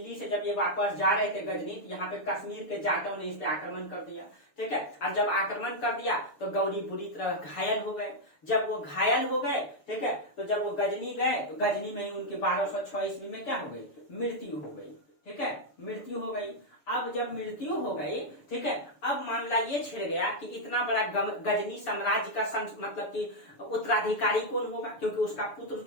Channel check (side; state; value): right; late; 6.9 ms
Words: से जब ये वापस जा रहे थे गजनी, यहाँ पे कश्मीर के जाटों ने इस पे आक्रमण कर दिया। ठीक है, अब जब आक्रमण कर दिया तो गौरी बुरी तरह घायल हो गए। जब वो घायल हो गए, ठीक है, तो जब वो गजनी गए तो गजनी में ही उनकी 1206 ईस्वी में क्या हो गई, मृत्यु हो गई। ठीक है, मृत्यु हो गई। अब जब मृत्यु हो गई, ठीक है, अब मामला ये छिड़ गया कि इतना बड़ा गजनी साम्राज्य का मतलब कि उत्तराधिकारी कौन होगा, क्योंकि उसका पुत्र